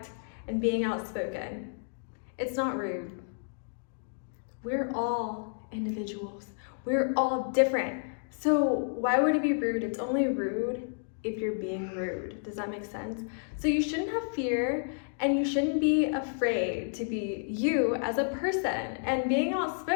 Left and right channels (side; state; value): right; silent; digital silence